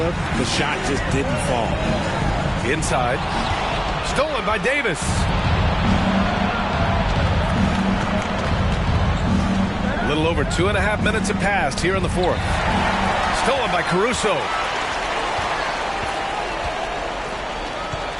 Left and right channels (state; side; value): identical; both; correlation 1.00